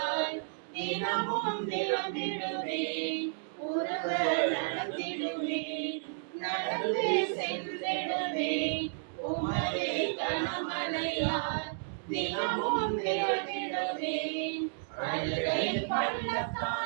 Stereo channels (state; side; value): silent; left; digital silence